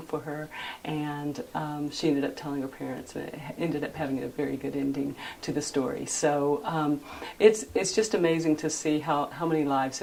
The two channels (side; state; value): both; identical; correlation 1.00